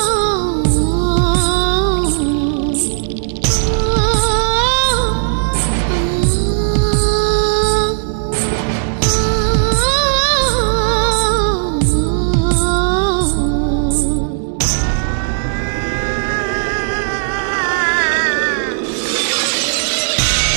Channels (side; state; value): left; silent; digital silence